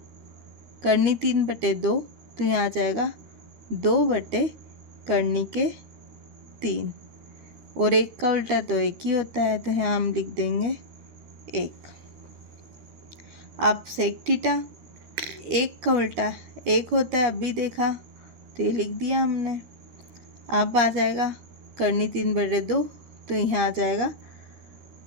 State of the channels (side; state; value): left; late; 13 ms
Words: करनी 3/2, तो यहाँ आ जाएगा 2 करनी के 3। और 1 का उल्टा तो 1 ही होता है, तो यहाँ हम लिख देंगे 1। अब सेक थीटा, 1 का उल्टा 1 होता है, अभी देखा तो ये लिख दिया हमने। अब आ जाएगा करनी 3/2, तो यहाँ आ जाएगा